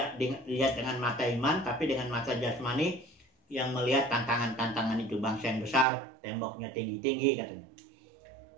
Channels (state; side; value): drops out; left; at 5.9 s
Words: dilihat dengan mata iman, tapi dengan mata jasmani yang melihat tantangan-tantangan itu. Bangsa yang besar, temboknya tinggi-tinggi katanya.